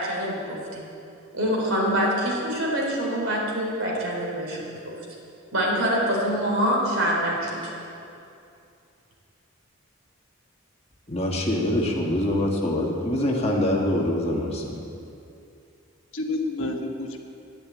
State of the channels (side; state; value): both; normal; correlation 0.25